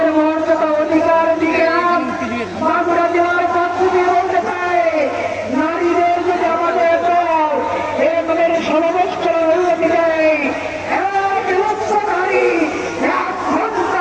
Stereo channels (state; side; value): identical; both; correlation 1.00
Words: মর্যাদা অধিকার দিলাম, বাঁকুড়া জেলার পক্ষ দিয়ে বলতে চাই, নারীদের যদি আমাদের দল এরকমের সমাবেশ করার অনুমতি দেয়, এক লক্ষ নারী 1